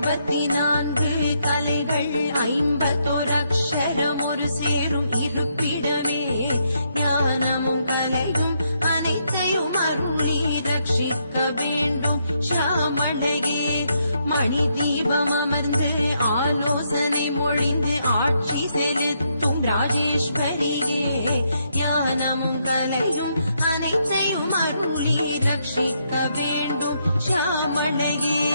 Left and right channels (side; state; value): both; inverted; correlation -0.77